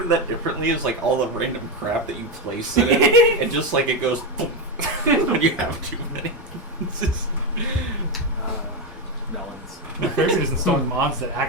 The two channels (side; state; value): both; normal; correlation 0.11